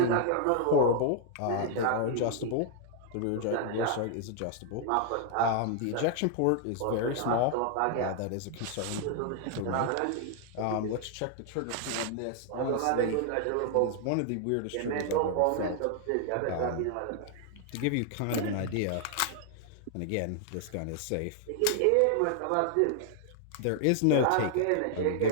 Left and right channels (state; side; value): different; both; correlation 0.00